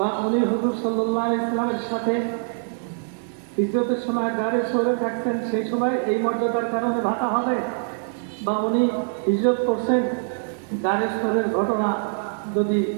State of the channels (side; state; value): left; silent; digital silence